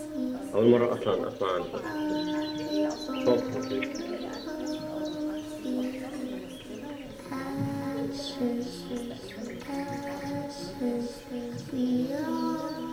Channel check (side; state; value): both; identical; correlation 1.00